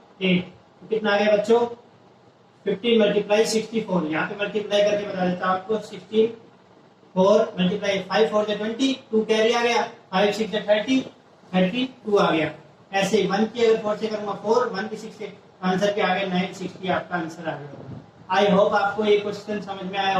8, तो कितना आ गया बच्चों 15 मल्टीप्लाई 64। यहाँ पे मल्टीप्लाई करके बता देता हूँ आपको, 16 4 मल्टीप्लाई 5 4 20, 2 कैरी आ गया, 5 6 30, 32 आ गया। ऐसे 1 की अगर 4 से करूंगा 4, 1 की 6 से आंसर क्या आ गया 960, आपका आंसर आ गया। आई होप आपको ये क्वेश्चन समझ में आया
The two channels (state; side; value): identical; both; correlation 1.00